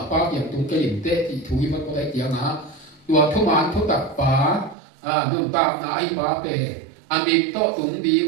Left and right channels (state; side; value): drops out; left; at 4.8 s